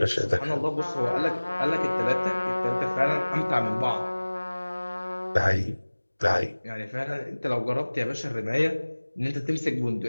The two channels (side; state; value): both; inverted; correlation -1.00